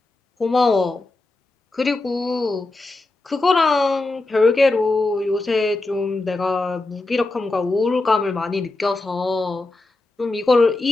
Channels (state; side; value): quieter; right; 3.1 dB